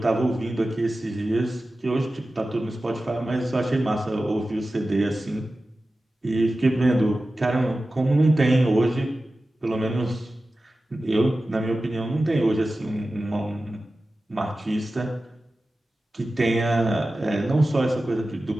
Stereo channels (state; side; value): normal; both; correlation 0.95